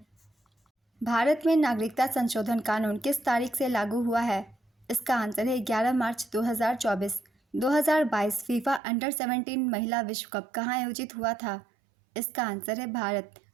भारत में नागरिकता संशोधन कानून किस तारीख से लागू हुआ है? इसका आंसर है 11 मार्च 2024। 2022 फीफा अंडर 17 महिला विश्व कप कहाँ आयोजित हुआ था? इसका आंसर है भारत।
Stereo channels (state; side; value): drops out; left; at 8.8 s